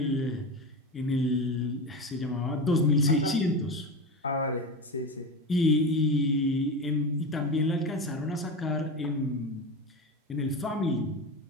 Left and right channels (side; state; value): both; normal; correlation 0.23